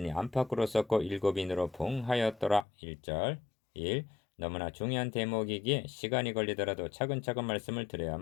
안팎으로 썼고 7인으로 봉하였더라. 1절 1. 너무나 중요한 대목이기에 시간이 걸리더라도 차근차근 말씀을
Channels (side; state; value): right; drops out; at 2.7 s